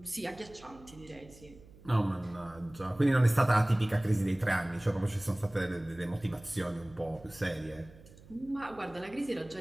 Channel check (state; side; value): noise; right; hum, 22 dB below the sound